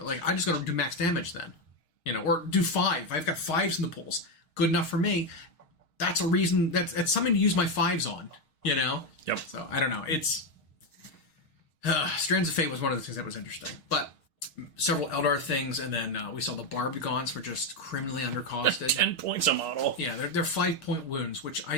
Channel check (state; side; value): late; right; 6.4 ms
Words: Like, I just got to do max damage then. Or do 5. I've got 5s in the pools. Good enough for me. That's a reason, that's something to use my 5s on, Yep. So, I don't know. It's... Strands of Fate was one of the things that was interesting. But several Eldar things, and then we saw the Barbed Gaunts were just criminally undercosted. 10 points a model. Yeah, they're 5-point wounds, which I